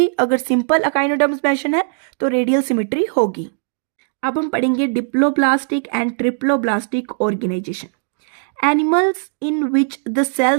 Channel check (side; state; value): left; silent; digital silence